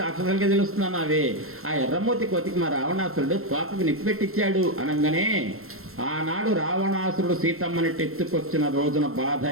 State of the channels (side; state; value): left; late; 0.62 ms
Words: రాక్షసులకే తెలుస్తున్నాను అవే. ఆ ఎర్రమూర్తి కోతికి మా రావణాసురుడు తోకకు నిప్పు పెట్టించాడు అనగానే ఆనాడు రావణాసురుడు సీతమ్మని ఎత్తుకొచ్చిన రోజున బాధ